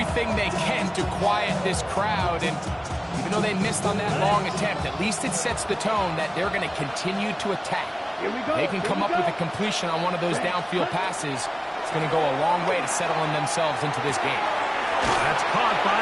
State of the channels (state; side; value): identical; both; correlation 1.00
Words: they can to quiet this crowd, and even though they missed on that long attempt, at least it sets the tone that they're going to continue to attack. They can come up with a completion on one of those downfield passes. It's going to go a long way to settling themselves into this game. That's caught